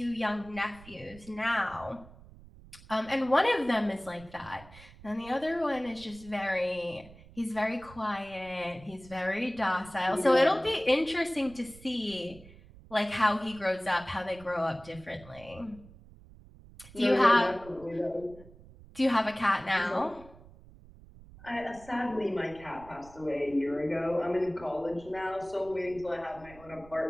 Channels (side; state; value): right; noise; rumble, 21 dB below the sound